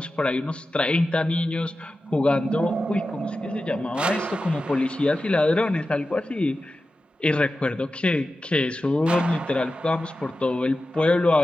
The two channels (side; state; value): both; normal; correlation 0.93